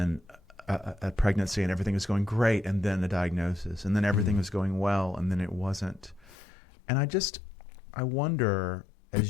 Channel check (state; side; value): drops out; right; at 6.4 s